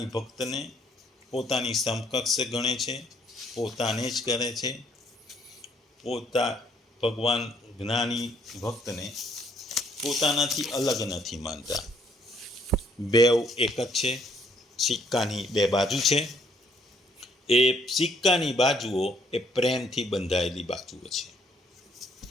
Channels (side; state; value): both; normal; correlation 0.66